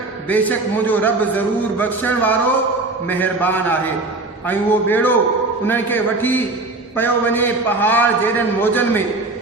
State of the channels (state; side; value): quieter; left; 3.1 dB